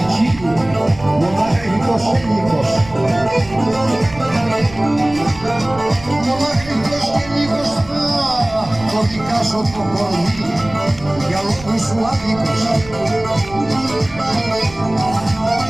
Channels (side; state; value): right; noise; rumble, 17 dB below the sound